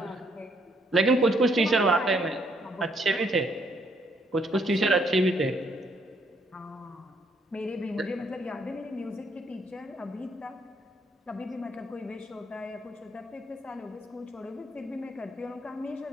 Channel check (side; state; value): both; normal; correlation 0.70